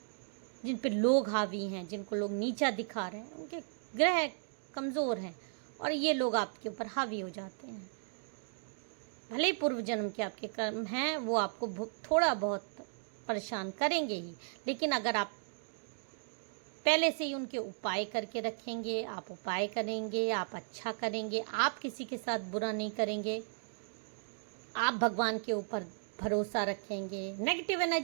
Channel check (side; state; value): left; silent; digital silence